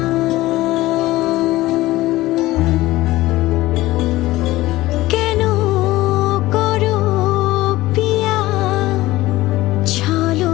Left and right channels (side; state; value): right; quieter; 17.8 dB